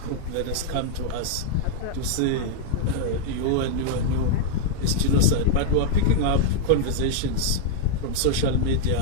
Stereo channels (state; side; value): different; both; correlation -0.01